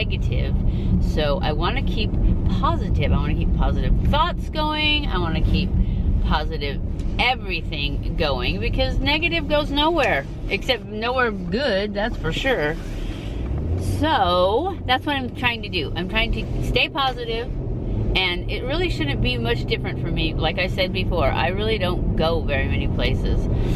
So I want to keep positive. I want to keep positive thoughts going. I want to keep positive everything going, because negative goes nowhere, except nowhere good, that's for sure. So that's what I'm trying to do. I'm trying to stay positive, and it really shouldn't be much different for me. Like I said before, I really don't go very many places.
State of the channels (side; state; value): both; identical; correlation 1.00